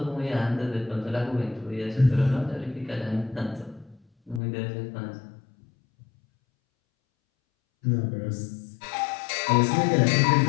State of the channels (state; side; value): drops out; right; at 4.4 s